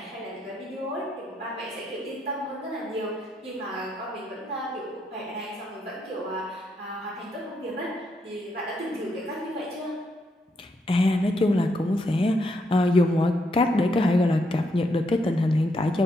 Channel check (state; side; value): normal; both; correlation 0.78